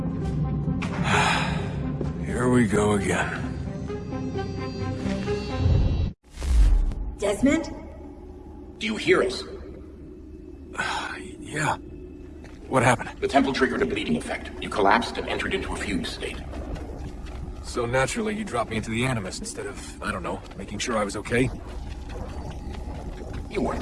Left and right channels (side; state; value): both; identical; correlation 1.00